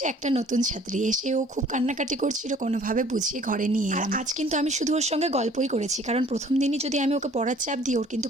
একটা নতুন ছাত্রী, এসে ও খুব কান্নাকাটি করছিল, কোনোভাবে বুঝিয়ে ঘরে নিয়ে এলাম। আজ কিন্তু আমি শুধু ওর সঙ্গে গল্পই করেছি, কারণ প্রথম দিনই যদি আমি ওকে পড়ার চাপ দিই, ওর কিন্তু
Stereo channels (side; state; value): both; normal; correlation 0.54